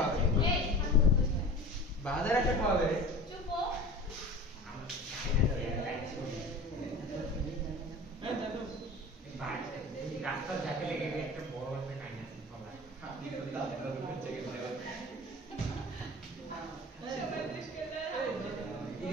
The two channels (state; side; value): normal; both; correlation 0.37